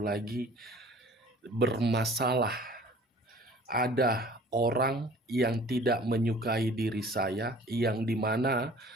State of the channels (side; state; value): both; normal; correlation 0.49